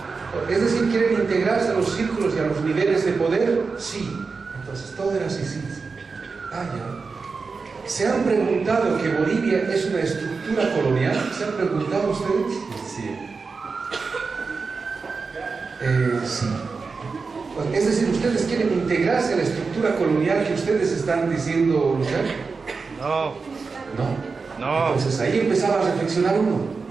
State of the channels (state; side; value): quieter; left; 4.6 dB